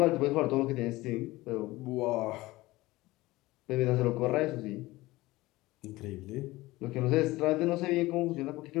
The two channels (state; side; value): quieter; right; 19.3 dB